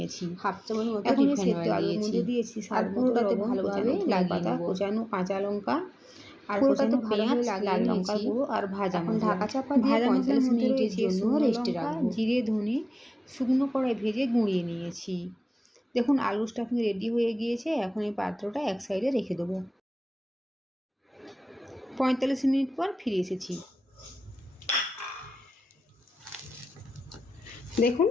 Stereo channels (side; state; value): both; normal; correlation 0.96